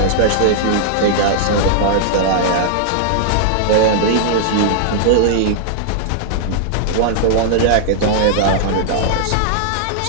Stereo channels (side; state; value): both; different; correlation -0.01